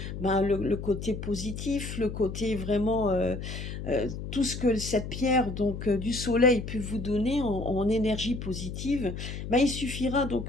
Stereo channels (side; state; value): left; noise; hum, 7 dB below the sound